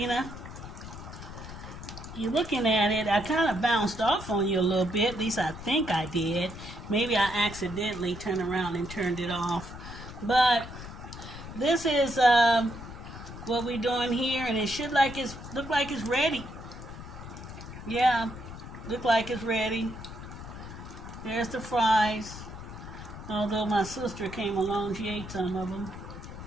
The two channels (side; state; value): left; noise; rumble, 12 dB below the sound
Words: You looking at it, I kind of bounced off on you a little bit. At least I think I did. Maybe I accidentally turned around and turned it off. But this is what we're doing here, and it should look like it's ready. Yeah, look like it's ready. There's the fries. Although my sister came along, she ate some of them.